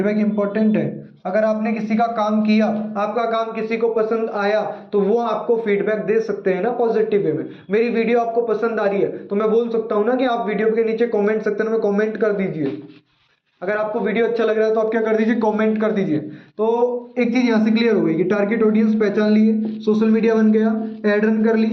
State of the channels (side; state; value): both; identical; correlation 1.00